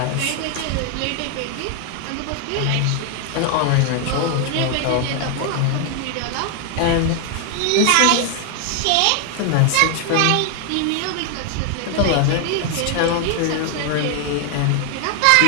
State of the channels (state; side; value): different; both; correlation 0.00